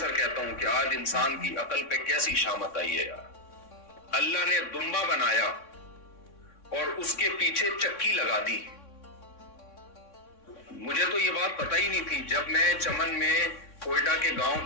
کہتا ہوں کہ آج انسان کی عقل پہ کیسی شامت آئی ہے یار. اللہ نے دمبا بنایا اور اس کے پیچھے چکی لگا دی. مجھے تو یہ بات پتہ ہی نہیں تھی. جب میں چمن میں کوئٹہ کے گاؤں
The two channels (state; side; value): late; right; 3.6 ms